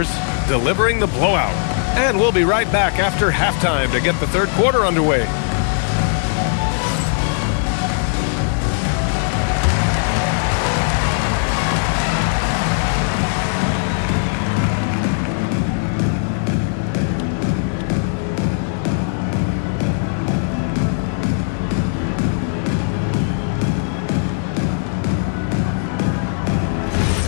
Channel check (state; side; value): silent; right; digital silence